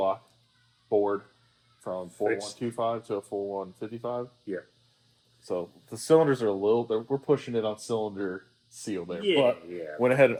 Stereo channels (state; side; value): identical; both; correlation 1.00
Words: board, from 4125 to a 4155. Yeah. So the cylinders are we're pushing it on cylinder seal there. Yeah, But yeah. went ahead and